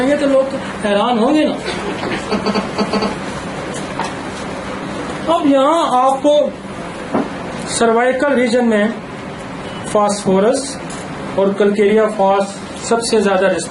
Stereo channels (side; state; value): both; identical; correlation 1.00